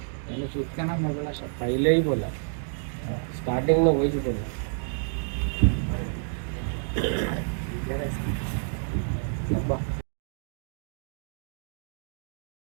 పైలే बोला स्टार्टिंग में वही बोला।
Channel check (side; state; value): left; silent; digital silence